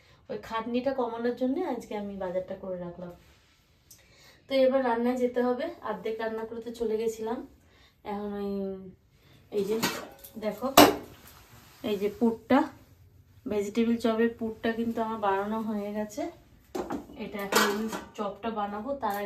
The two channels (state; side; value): identical; both; correlation 1.00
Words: ওই খাটনিটা কমানোর জন্য আজকে আমি বাজারটা করে রাখলাম। তো এবার রান্নায় যেতে হবে, অর্ধেক রান্না করতে চলে গেছিলাম। এখন ওই এই যে দেখো, এই যে পুরটা, ভেজিটেবিল চপের পুরটা কিন্তু আমার বানানো হয়ে গেছে। এটা এখন আমি চপটা বানাবো, তার